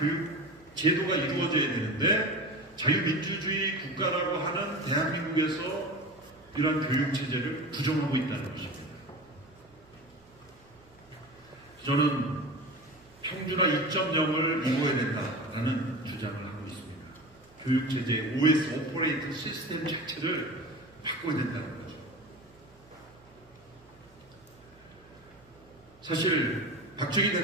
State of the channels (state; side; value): noise; right; hum, 28 dB below the sound